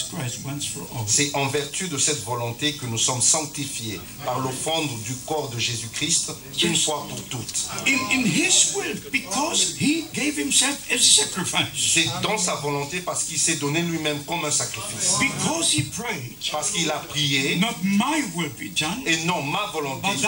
Christ once for all. C'est en vertu de cette volonté que nous sommes sanctifiés par l'offrande du corps de Jésus-Christ une fois pour toutes. In his will, because he gave himself as a sacrifice. C'est dans sa volonté parce qu'il s'est donné lui-même comme un sacrifice. Because he prayed. Parce qu'il a prié. Not my will be done. Et non ma volonté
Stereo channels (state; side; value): identical; both; correlation 1.00